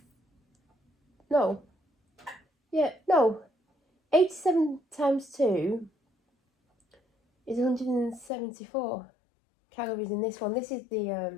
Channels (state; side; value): drops out; right; at 8.3 s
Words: no, yeah, no, 87 times 2 is 174 calories in this one. This is